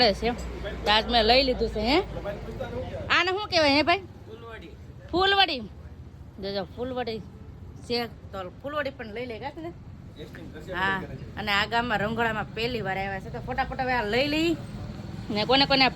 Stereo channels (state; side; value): identical; both; correlation 1.00